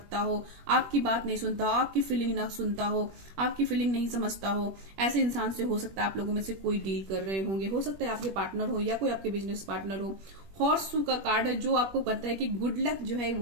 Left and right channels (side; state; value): left; late; 21 ms